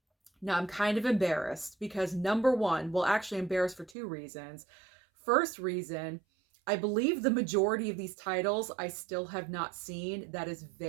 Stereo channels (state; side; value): drops out; left; at 4.0 s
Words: Now I'm kind of embarrassed because number one, well, actually embarrassed for 2 reasons. First reason, I believe the majority of these titles I still have not seen. That is